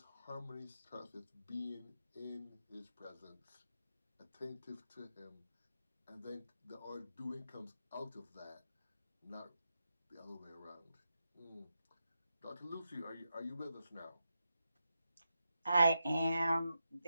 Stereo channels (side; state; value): both; inverted; correlation -0.87